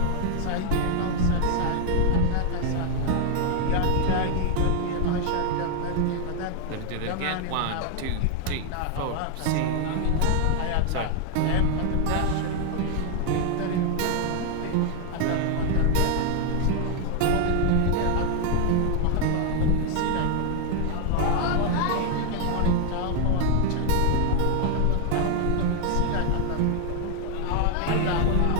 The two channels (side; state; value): both; different; correlation 0.00